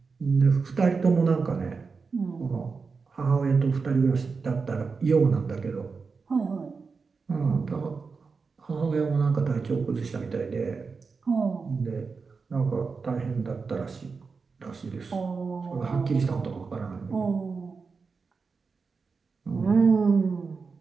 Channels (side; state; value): left; quieter; 4.8 dB